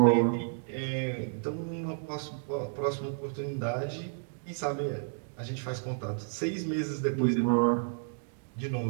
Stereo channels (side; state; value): left; silent; digital silence